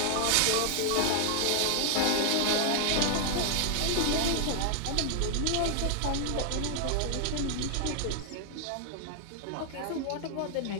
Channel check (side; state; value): both; different; correlation 0.00